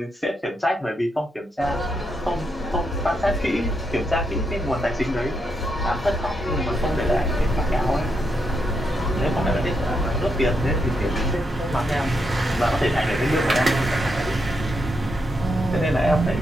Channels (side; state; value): both; normal; correlation 0.81